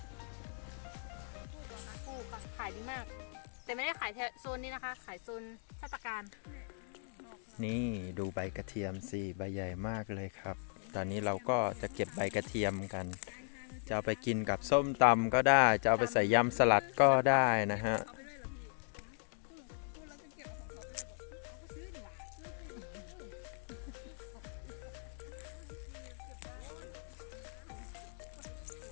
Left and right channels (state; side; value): silent; right; 52 dB below the other